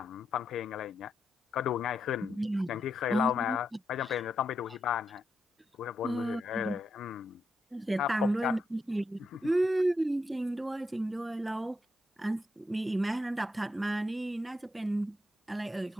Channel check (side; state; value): both; normal; correlation 0.83